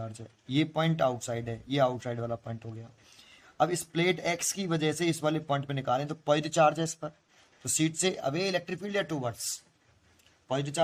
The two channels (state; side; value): identical; both; correlation 1.00